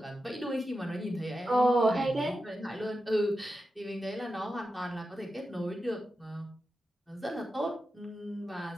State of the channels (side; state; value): both; normal; correlation 0.90